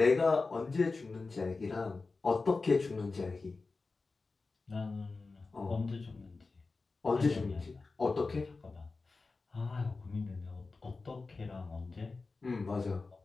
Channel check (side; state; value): right; quieter; 3.9 dB